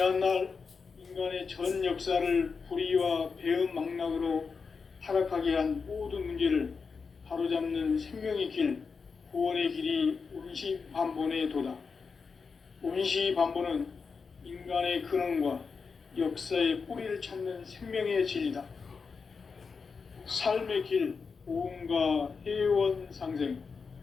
인간의 전 역사를 불의와 배움 망락으로 타락하게 한 모든 문제를 바로잡는 생명의 길, 구원의 길이 원시반본의 도다. 원시반본은 인간의 근원과 역사의 뿌리를 찾는 생명의 진리다. 삶의 길, 보험과 회원 상생.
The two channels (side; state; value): right; quieter; 5.2 dB